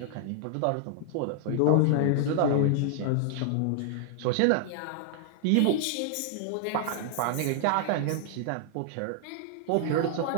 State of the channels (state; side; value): different; both; correlation 0.00